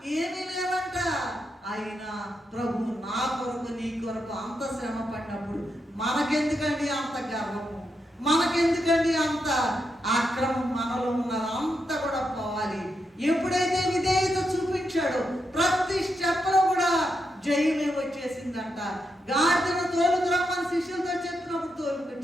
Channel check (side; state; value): both; normal; correlation 0.83